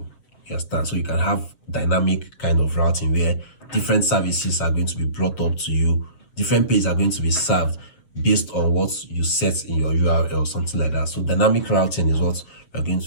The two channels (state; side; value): late; right; 7.1 ms